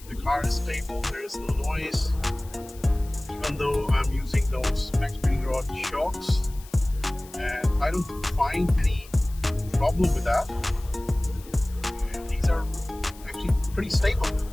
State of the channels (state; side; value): noise; left; hiss, 21 dB below the sound